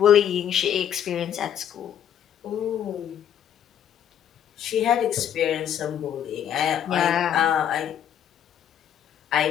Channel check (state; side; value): quieter; right; 9.7 dB